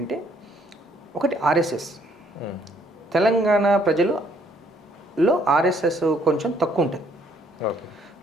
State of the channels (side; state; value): both; normal; correlation 0.66